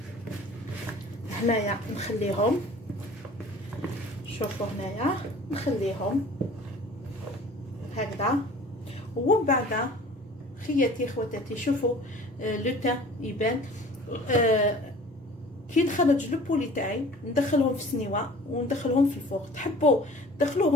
هنايا نخليهم، شوفوا هنايا نخليهم هكذا. ومن بعد خياتي خواتاتي شوفوا لو تان يبان. كي نخرج لو بولي تاعي ندخلهم في السنيوه وندخلهم في الفوق. تحبوا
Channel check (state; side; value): normal; both; correlation 0.46